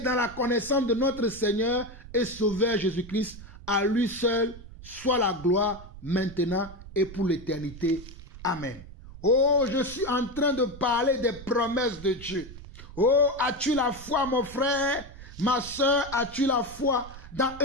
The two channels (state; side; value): noise; right; rumble, 16 dB below the sound